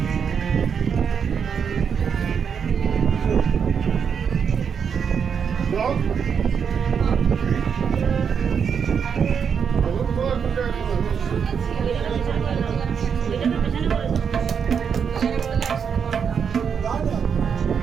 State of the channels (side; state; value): left; quieter; 6.9 dB